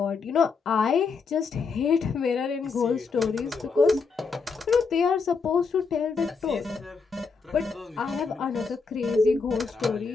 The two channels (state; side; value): quieter; right; 4.9 dB